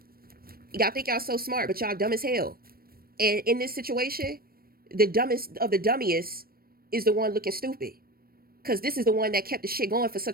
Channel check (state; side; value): late; left; 0.44 ms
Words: Y'all think y'all so smart, but y'all dumb as hell. And in this situation, the dumbest of the dummiest is the one looking stupid, because this is the one that kept the shit going for